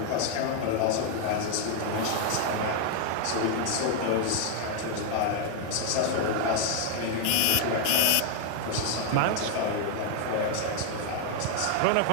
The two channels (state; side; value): different; both; correlation 0.00